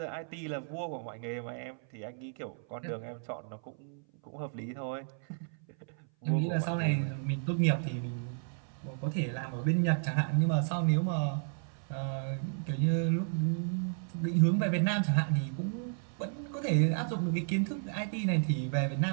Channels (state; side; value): silent; left; 56 dB below the other